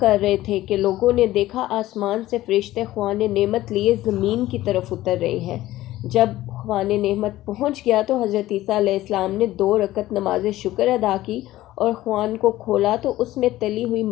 رہے تھے کہ لوگوں نے دیکھا آسمان سے فرشتے خوان نعمت لیے زمین کی طرف اتر رہے ہیں۔ جب خوان نعمت پہنچ گیا تو حضرت عیسیٰ علیہ السلام نے 2 رکعت نماز شکر ادا کی اور خوان کو کھولا تو اس میں تلی ہوئی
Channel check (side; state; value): right; quieter; 15.7 dB